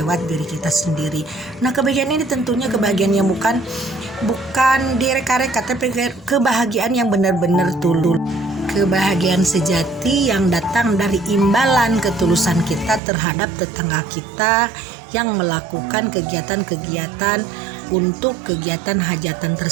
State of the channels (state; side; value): drops out; left; at 13.0 s